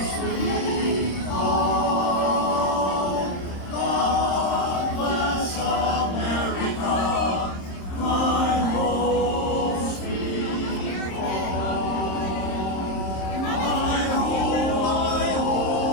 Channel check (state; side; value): late; right; 26 ms